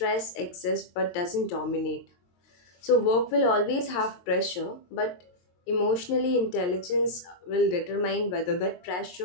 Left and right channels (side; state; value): right; late; 22 ms